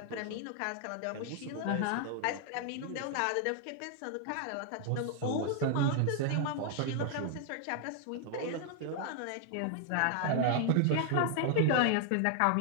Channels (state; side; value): different; both; correlation 0.00